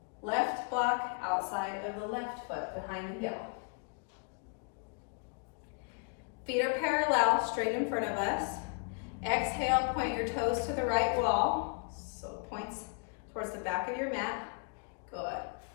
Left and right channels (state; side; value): quieter; right; 39.4 dB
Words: Left block outside of the left foot behind the heel. Feet are parallel, straight in front of us. Exhale, point your toes to the right wall. So it points towards the back of your mat. Good.